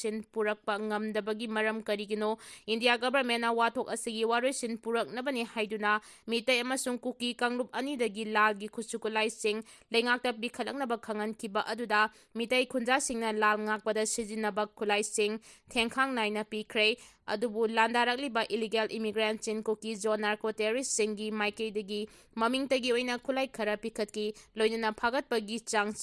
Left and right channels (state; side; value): identical; both; correlation 1.00